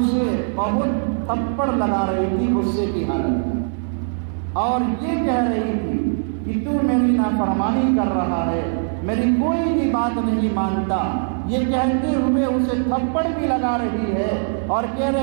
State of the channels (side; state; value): left; silent; digital silence